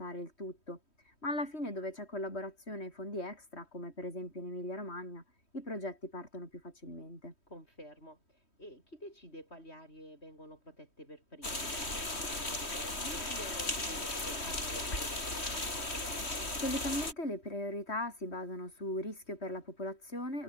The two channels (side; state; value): right; late; 3.1 ms